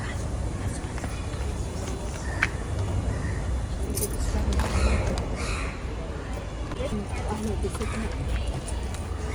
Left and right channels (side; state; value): both; identical; correlation 1.00